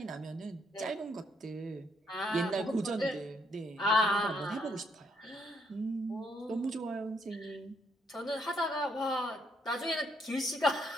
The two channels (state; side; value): normal; both; correlation 0.73